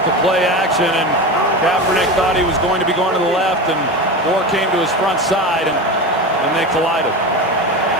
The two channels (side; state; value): both; normal; correlation 0.24